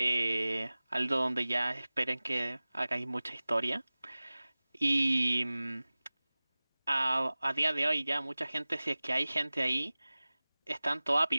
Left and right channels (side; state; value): both; inverted; correlation -0.99